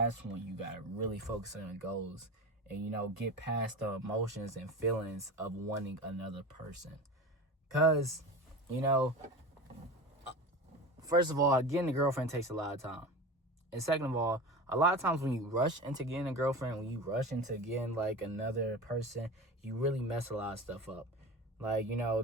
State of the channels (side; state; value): both; normal; correlation 0.30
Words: when you gotta really focus on your goals and, you know, get past the emotions and feelings of wanting another person. Cause, you know, first of all, getting a girlfriend takes a lot of time. And second of all, a lot of times when you rush into getting a girlfriend, when you rush into getting, like, another person, you really mess a lot of stuff up. Like, you know,